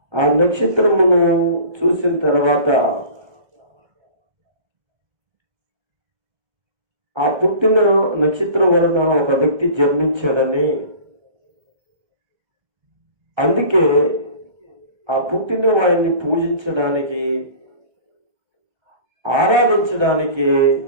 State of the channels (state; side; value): late; left; 1.3 ms